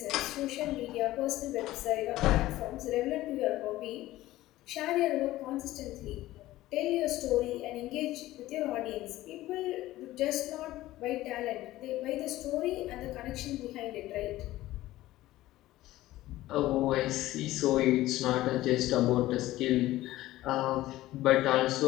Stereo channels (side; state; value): right; quieter; 16.2 dB